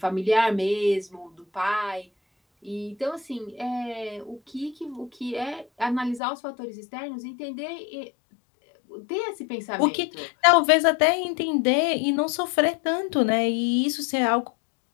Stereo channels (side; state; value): right; drops out; at 6.2 s